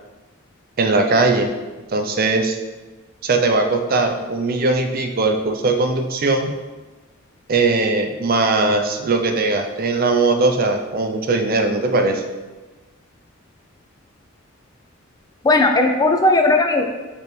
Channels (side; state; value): both; normal; correlation 0.09